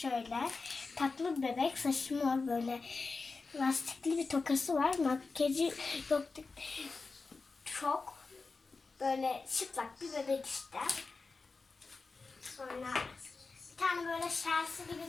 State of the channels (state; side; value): quieter; right; 4.1 dB